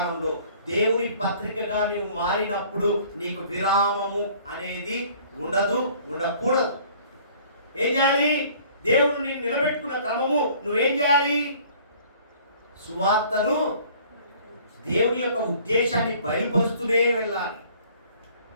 దేవుని పత్రికగా నువ్వు మారినప్పుడు నీకు విరామము అనేది ఉండదు, ఉండకూడదు. ఏం చేయాలి? దేవుడు నేను నిలబెట్టుకున్న క్రమము నువ్వేం చేయాలి? సువార్తను, దేవుని యొక్క ఉద్దేశాన్ని బయలుపరుస్తూనే వెళ్ళాలి.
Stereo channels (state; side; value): inverted; both; correlation -0.54